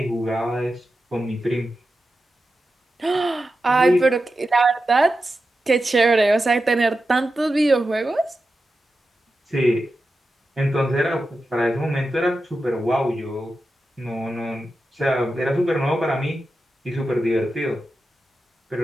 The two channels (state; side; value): normal; both; correlation 0.91